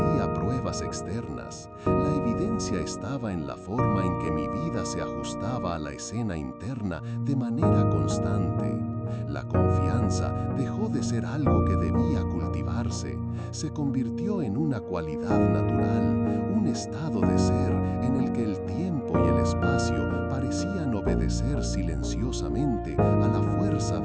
pruebas externas. La evidencia estaba en la forma en que mi vida se ajustaba a la escena interna de manera constante. La confianza dejó de ser algo que debía cultivarse, se convirtió en una cualidad natural, un estado de ser en el que el tiempo y el espacio parecían obedecer silenciosamente a la fuerza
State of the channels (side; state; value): both; identical; correlation 1.00